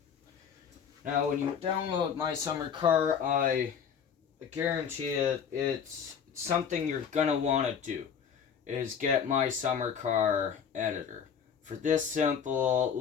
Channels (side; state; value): right; quieter; 7.4 dB